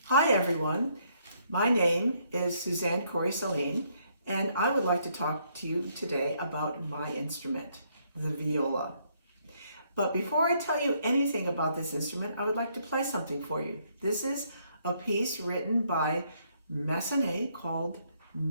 Hi everyone, my name is Suzanne Corey-Sahlin and I would like to talk to you today about my instrument, the viola. But before I tell you anything about this instrument, I would like to play something for you. This is a piece written by Massenet called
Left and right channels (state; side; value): inverted; both; correlation -0.70